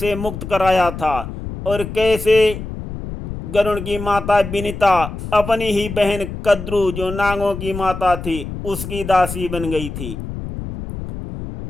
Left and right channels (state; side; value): noise; left; rumble, 8 dB below the sound